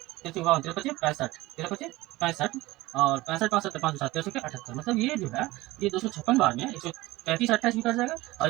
13 चौका 13 पचे 65, 13 पचे 65 और 65 5 7 5 7 13 के 78, मतलब ये जो है ये 256 बार में 135 28 भी कट जाएगा और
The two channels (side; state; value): left; quieter; 19.2 dB